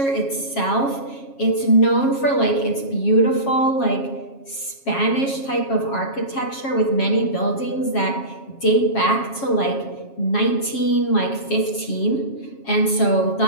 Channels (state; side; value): late; right; 7.3 ms